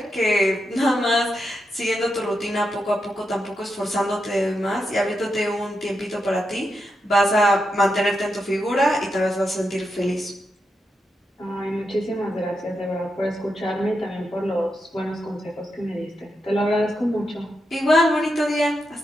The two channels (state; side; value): normal; both; correlation 0.85